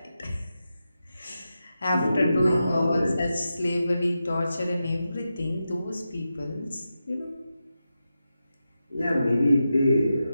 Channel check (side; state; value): both; inverted; correlation -0.90